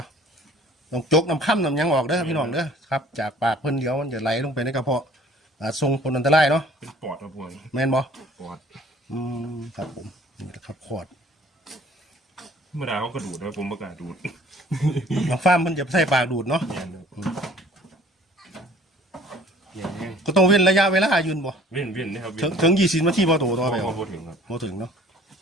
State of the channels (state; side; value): normal; both; correlation 0.52